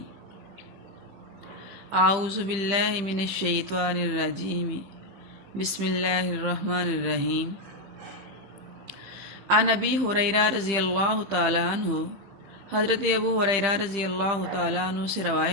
اعوذ باللہ من الشیطان الرجیم، بسم اللہ الرحمن الرحیم۔ عن ابی ہریرہ رضی اللہ تعالیٰ عنہ، حضرت ابو ہریرہ رضی اللہ تعالیٰ عنہ سے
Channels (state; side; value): late; left; 15 ms